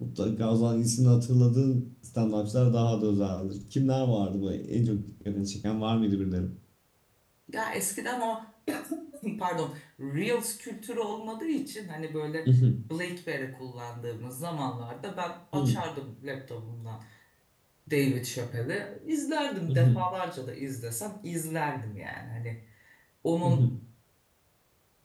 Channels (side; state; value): both; identical; correlation 1.00